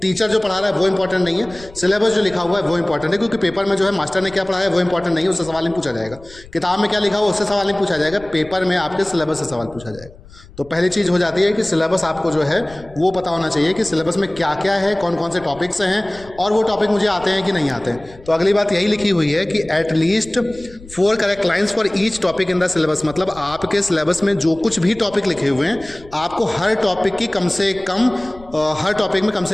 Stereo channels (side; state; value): left; noise; rumble, 21 dB below the sound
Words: जो पढ़ा रहा है वो इंपॉर्टेंट नहीं है, सिलेबस जो लिखा हुआ है वो इंपॉर्टेंट है। क्योंकि पेपर में जो है मास्टर ने क्या पढ़ाया है वो इंपॉर्टेंट नहीं है, उससे सवाल नहीं पूछा जाएगा। किताब में क्या लिखा हुआ उससे सवाल नहीं पूछा जाएगा, पेपर में आपके सिलेबस से सवाल पूछा जाएगा। तो पहली चीज़ हो जाती है कि सिलेबस आपको जो है वो पता होना चाहिए कि सिलेबस में क्या क्या है, कौन कौन से टॉपिक्स हैं, और वो टॉपिक मुझे आते हैं कि नहीं आते हैं। तो अगली बात यही लिखी हुई है कि at least 4 correct lines for each topic in the syllabus. मतलब आपके सिलेबस में जो कुछ भी टॉपिक लिखे हुए हैं आपको हर टॉपिक की कम से कम हर टॉपिक में कम